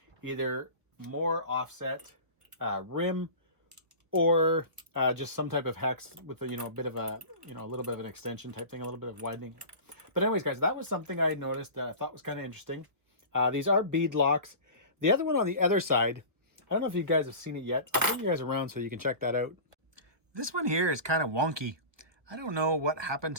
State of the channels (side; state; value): left; late; 1.4 ms